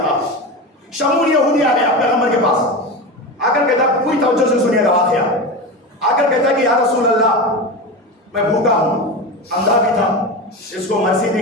شمول یہودی آ گیا پیغمبر کے پاس، آ کر کہتا پوری توجہ سے سنیے گا واقعہ، آ کر کہتا کہ یا رسول اللہ میں بھوکا ہوں، اندھا بھی تھا، اس کو مرسی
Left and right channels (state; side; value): normal; both; correlation 0.23